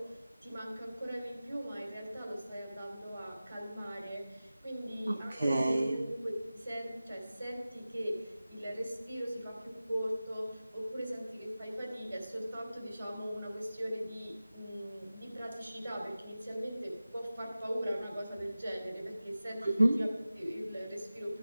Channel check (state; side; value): inverted; both; correlation -0.96